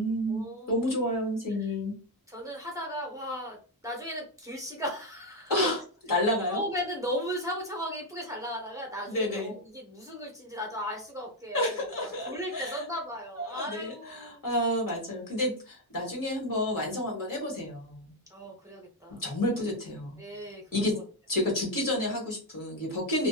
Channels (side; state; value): both; normal; correlation 0.06